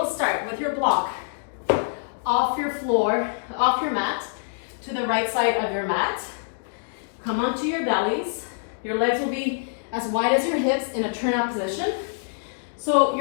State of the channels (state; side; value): silent; right; digital silence